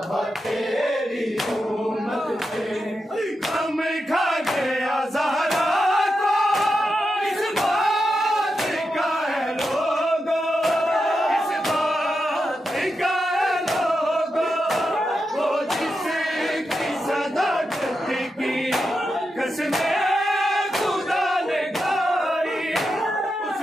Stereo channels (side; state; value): both; normal; correlation 0.88